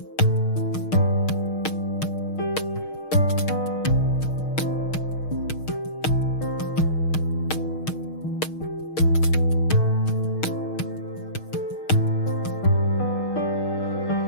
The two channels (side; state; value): right; late; 6.4 ms